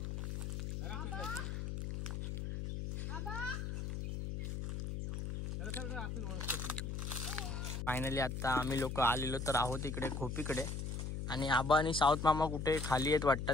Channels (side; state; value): left; noise; hum, 3 dB below the sound